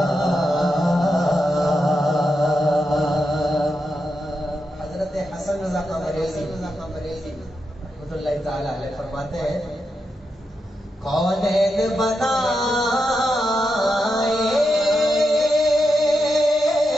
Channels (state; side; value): normal; both; correlation 0.86